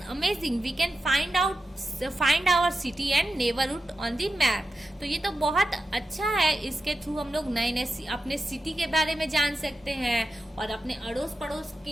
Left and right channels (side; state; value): both; normal; correlation 0.90